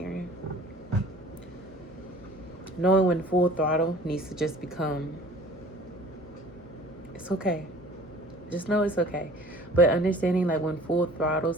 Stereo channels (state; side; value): normal; both; correlation 0.48